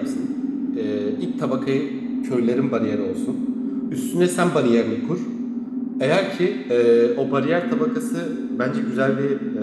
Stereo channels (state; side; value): identical; both; correlation 1.00